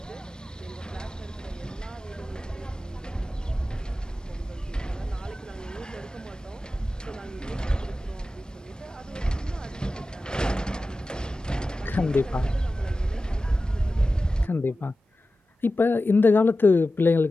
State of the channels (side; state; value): both; normal; correlation 0.94